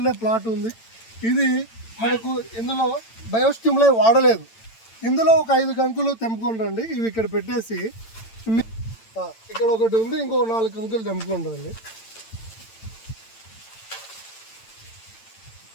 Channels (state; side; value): late; right; 8.9 ms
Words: ప్లాట్ ఉంది. ఇది మనకు ఇందులో బయోస్టిమ్లై వాడలేదు. ఇందులో ఒక 5 కంకులు తెంపుకొని రండి. ఇవి ఇక్కడ పెట్టేసి ఇక్కడ ఒకటి ఉంది, ఇంకో 4 కంకులు తెంపుకొని రండి.